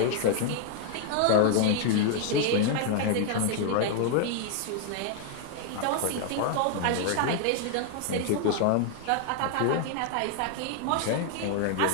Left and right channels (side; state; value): both; different; correlation 0.00